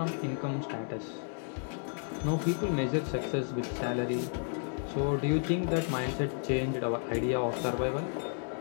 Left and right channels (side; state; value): right; silent; 56 dB below the other